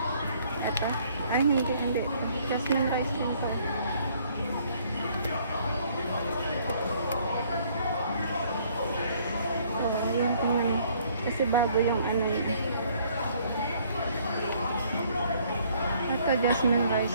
Ito. Ay, hindi. Jasmine rice din ito. So, yung tingnan. Kasi bago yung ano yun. Ito, jasmine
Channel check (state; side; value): inverted; both; correlation -0.62